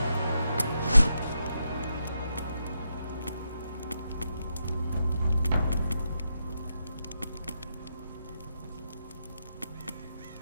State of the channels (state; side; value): inverted; both; correlation -0.83